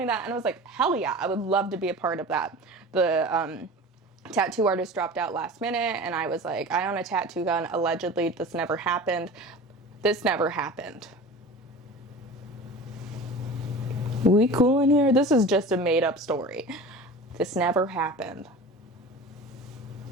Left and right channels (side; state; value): both; normal; correlation 0.36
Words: that, and I was like, hell yeah, I would love to be a part of that. The tattoo artist dropped out last minute, and I was like, I own a tattoo gun. Allegedly, this never happened. This never happened. We cool in here? This is just a made-up story. This never happened.